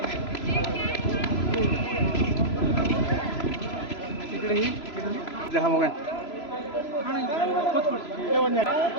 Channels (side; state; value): right; late; 3.0 ms